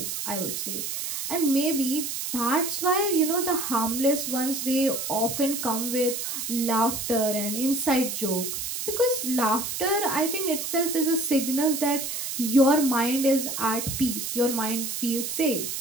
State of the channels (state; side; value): noise; right; hiss, 4 dB below the sound